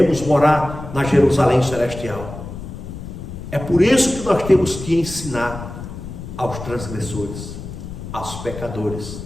morar na Jerusalém celestial. É por isso que nós temos que ensinar aos transgressores, aos pecadores,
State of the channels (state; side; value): noise; left; rumble, 10 dB below the sound